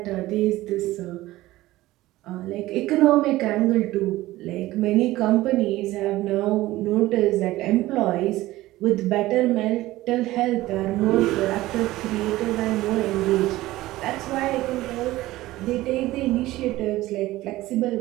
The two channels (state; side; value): quieter; left; 17.1 dB